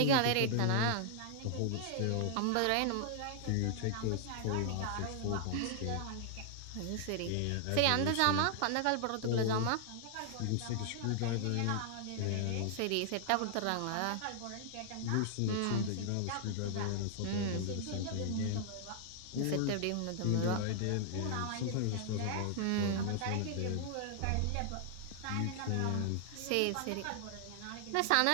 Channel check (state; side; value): different; both; correlation 0.00